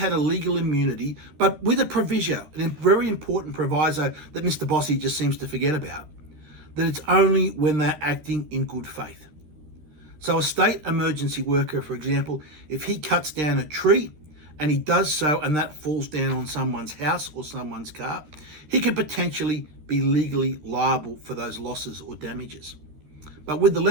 a legal immunity, but with a proviso, a very important proviso that Mr. Bossie just seems to forget about, that it's only when they're acting in good faith. So a state emergency worker, for example, if he cuts down a tree and he does so and that falls down on someone's house or someone's car, he could potentially be legally liable for those losses or damages. But with the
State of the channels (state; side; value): late; left; 13 ms